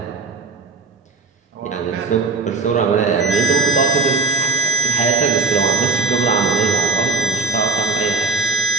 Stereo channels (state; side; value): quieter; left; 3.9 dB